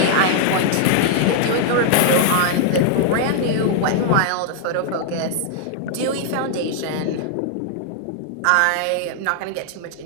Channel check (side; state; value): both; different; correlation 0.00